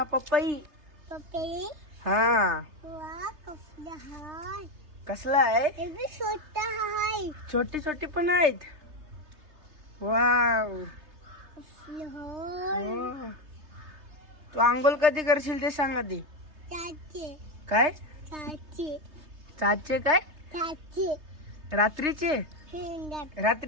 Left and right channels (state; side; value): late; left; 3.3 ms